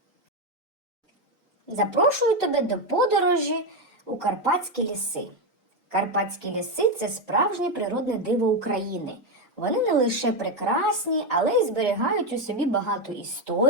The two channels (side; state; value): both; normal; correlation 0.09